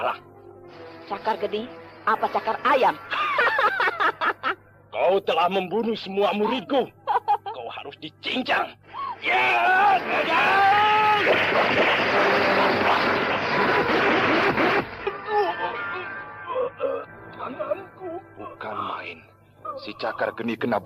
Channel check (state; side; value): identical; both; correlation 1.00